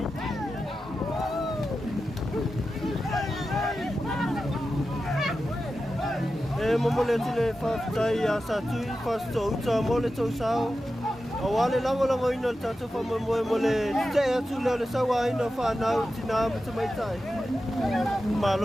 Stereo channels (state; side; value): normal; both; correlation 0.92